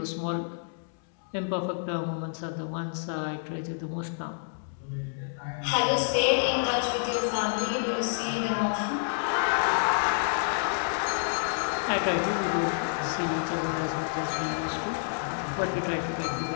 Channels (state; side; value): silent; right; digital silence